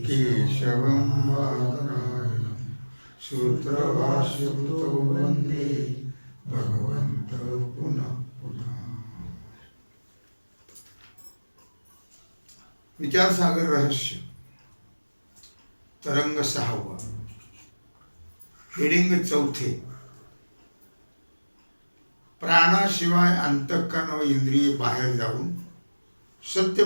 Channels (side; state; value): both; inverted; correlation -1.00